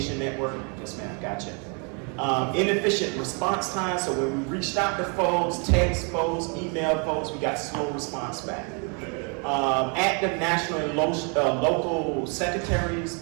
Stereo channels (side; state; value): left; quieter; 36.4 dB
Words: network. Yes, ma'am, gotcha. Inefficient response time. So when we reached out to folks, text folks, email folks, we got slow response back. Active national and local